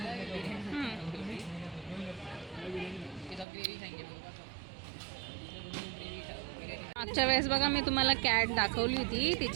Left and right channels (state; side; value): drops out; left; at 3.5 s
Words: मागच्या वेळेस बघा मी तुम्हाला कॅट दाखवली होती,